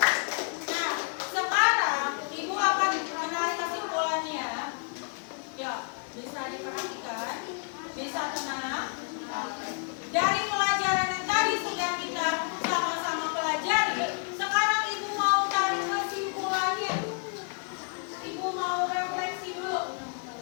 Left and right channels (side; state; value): right; quieter; 39.9 dB